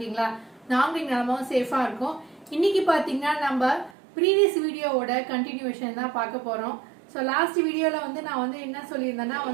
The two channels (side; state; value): left; drops out; at 3.9 s